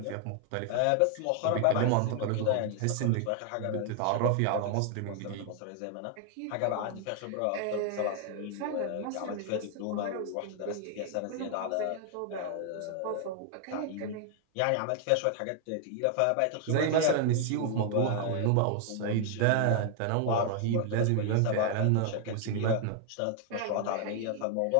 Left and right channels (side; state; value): both; different; correlation 0.00